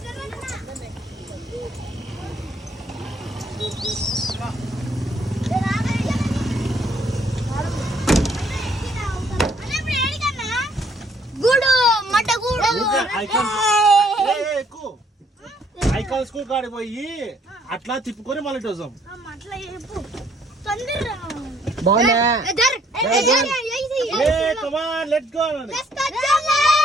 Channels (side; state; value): both; normal; correlation 0.65